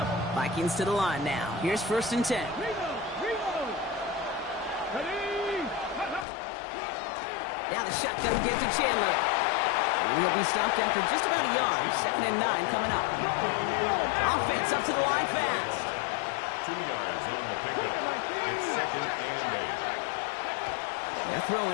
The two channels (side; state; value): right; drops out; at 6.2 s